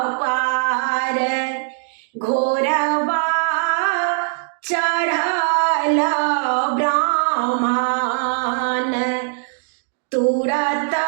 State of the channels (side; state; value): left; silent; digital silence